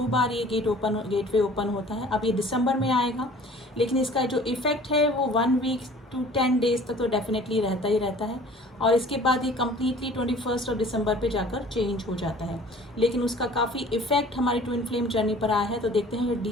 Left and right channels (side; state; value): both; normal; correlation 0.48